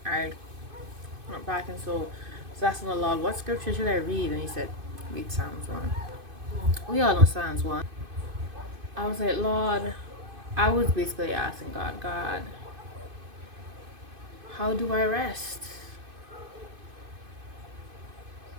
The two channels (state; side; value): late; left; 2.5 ms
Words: I went back and so I was asking the Lord, what scripture should I read? And he said, read Psalms 1. We all know Psalms 1. I was like, Lord, I was basically asking God, how do I rest?